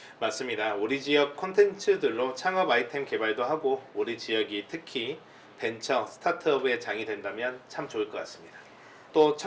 맞습니다. 우리 지역 콘텐츠들로 창업 아이템 개발도 하고 우리 지역이 특히 벤처, 스타트업의 장이 된다면 참 좋을 것 같습니다. 또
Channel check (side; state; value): both; identical; correlation 1.00